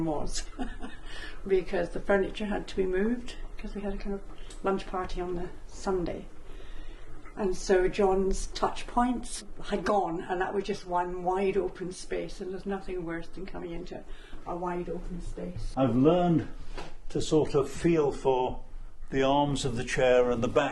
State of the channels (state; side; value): identical; both; correlation 1.00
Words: was because the furniture had to be moved because we had a kind of lunch party on the Sunday. And so John's touch points had gone, and that was just one wide open space, and there's nothing worse than coming into a wide open space. I've learned to sort of feel for the arms of the chair and the